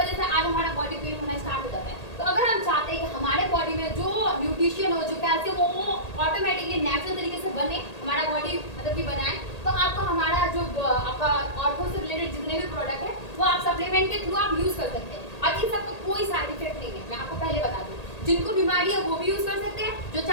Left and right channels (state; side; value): late; right; 1.8 ms